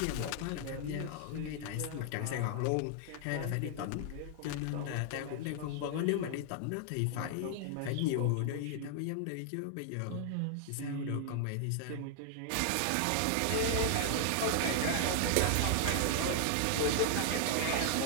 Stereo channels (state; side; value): different; both; correlation 0.00